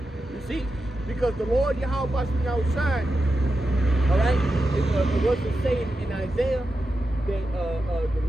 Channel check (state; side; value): normal; both; correlation 0.90